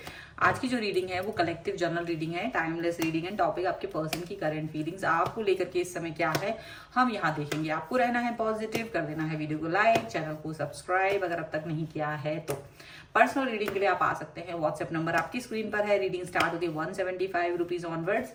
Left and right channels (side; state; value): both; identical; correlation 1.00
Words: आज की जो रीडिंग है वो कलेक्टिव जर्नल रीडिंग है, टाइमलेस रीडिंग है। टॉपिक आपके पर्सन की करंट फीलिंग्स आपको लेकर के इस समय क्या है हम यहाँ देखेंगे। आपको रहना है पॉजिटिव, कर देना है वीडियो को लाइक, चैनल को सब्सक्राइब अगर अब तक नहीं किया है तो। पर्सनल रीडिंग के लिए आप आ सकते हैं। व्हाट्सएप नंबर आपकी स्क्रीन पर है। रीडिंग स्टार्ट होती है 175 रुपीज ऑनवर्ड्स।